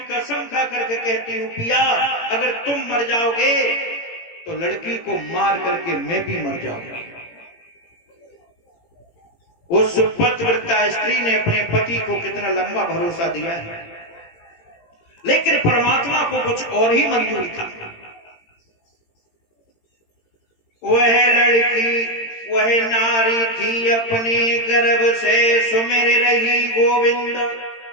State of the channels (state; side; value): late; right; 18 ms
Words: कसम खा करके कहती हूँ पिया अगर तुम मर जाओगे तो लड़की को मार करके मैं भी मर जाऊंगा। उस पतिव्रता स्त्री ने अपने पति को कितना लंबा भरोसा दिया है, लेकिन परमात्मा को कुछ और ही मंजूर था। वह लड़की वह नारी थी अपने गर्भ से सुमिर रही गोविंद,